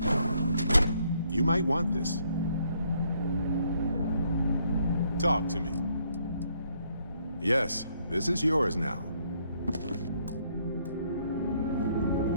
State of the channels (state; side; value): inverted; both; correlation -0.70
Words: You might want this. Talk to me. Yes, this is yours now.